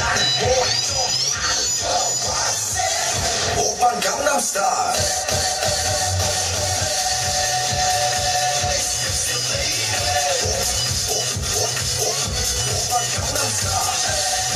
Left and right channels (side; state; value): both; identical; correlation 1.00